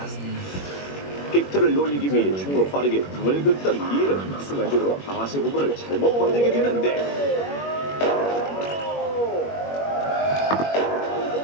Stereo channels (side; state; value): right; late; 21 ms